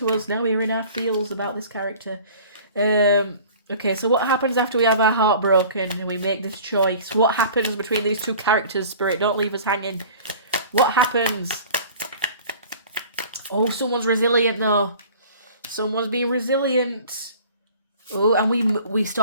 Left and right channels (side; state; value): both; inverted; correlation -0.45